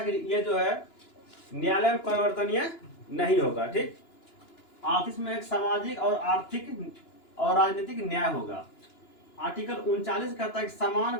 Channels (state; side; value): late; right; 2.9 ms